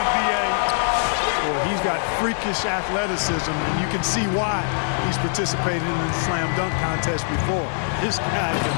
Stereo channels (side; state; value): right; silent; digital silence